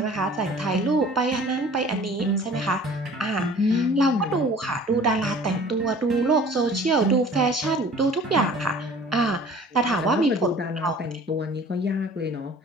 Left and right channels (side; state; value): both; normal; correlation 0.48